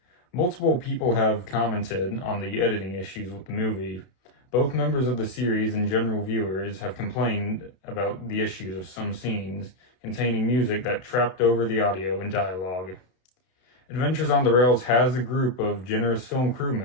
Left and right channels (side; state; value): right; late; 32 ms